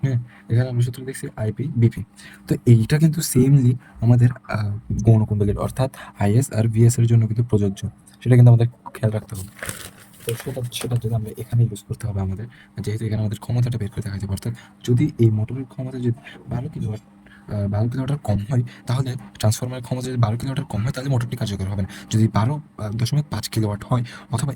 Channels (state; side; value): identical; both; correlation 1.00